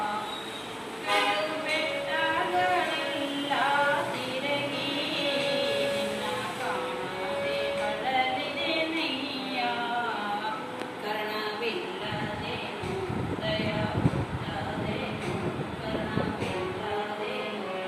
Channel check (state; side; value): identical; both; correlation 1.00